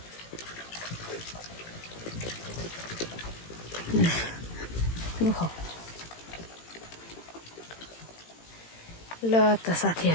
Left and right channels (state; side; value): late; right; 18 ms